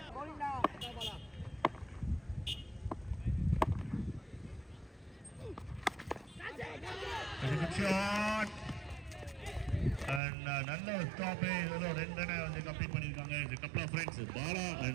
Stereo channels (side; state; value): left; drops out; at 10.2 s